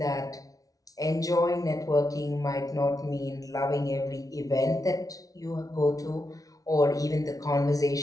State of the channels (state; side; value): late; right; 0.18 ms